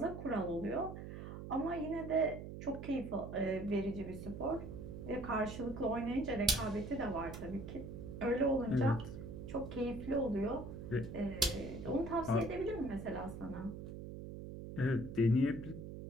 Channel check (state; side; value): noise; right; hum, 9 dB below the sound